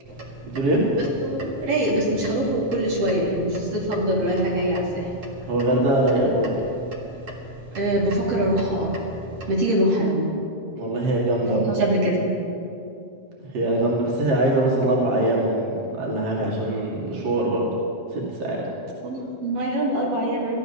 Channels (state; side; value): late; left; 7.5 ms